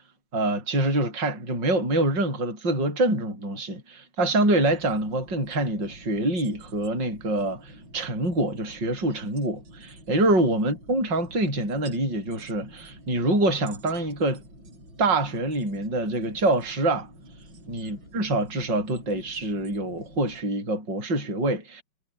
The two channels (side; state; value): left; late; 5.3 ms